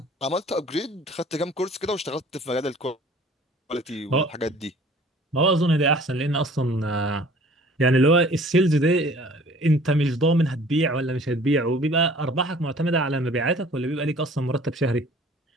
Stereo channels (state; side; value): normal; both; correlation 0.51